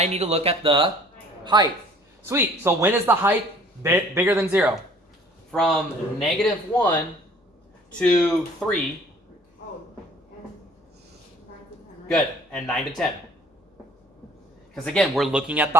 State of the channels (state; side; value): normal; both; correlation 0.53